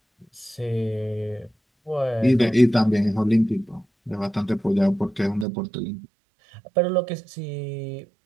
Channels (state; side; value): drops out; left; at 5.5 s